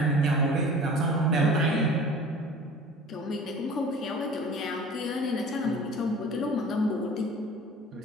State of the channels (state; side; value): normal; both; correlation 0.43